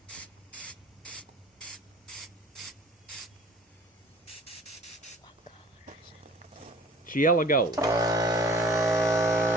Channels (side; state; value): both; normal; correlation 0.49